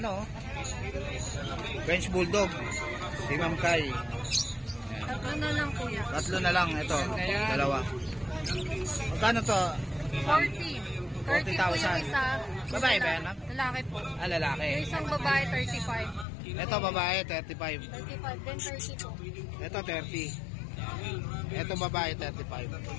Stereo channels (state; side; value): drops out; right; at 16.2 s